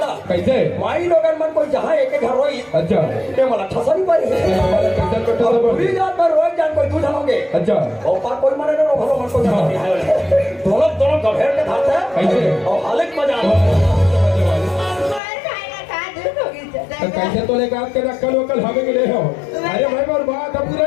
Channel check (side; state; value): right; drops out; at 15.2 s